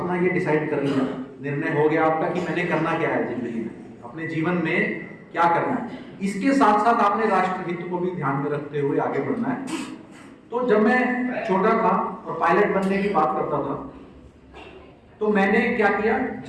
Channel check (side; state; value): both; identical; correlation 1.00